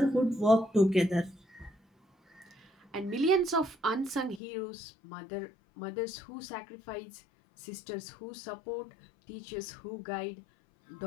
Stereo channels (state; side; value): drops out; right; at 4.4 s